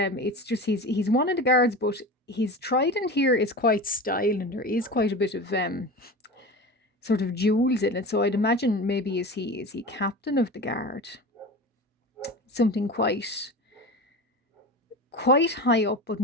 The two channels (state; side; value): normal; both; correlation 0.30